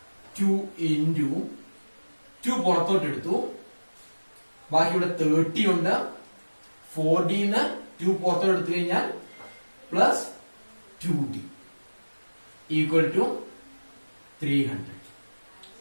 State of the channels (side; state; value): both; inverted; correlation -1.00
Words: 2 into 2 പുറത്തോട്ട് എടുത്തു. ബാക്കി ഇവിടെ 30 ഉണ്ട്. 4d ന്ന് 2 പുറത്തോട്ട് എടുത്തു കഴിഞ്ഞാൽ plus 2d equal to 300.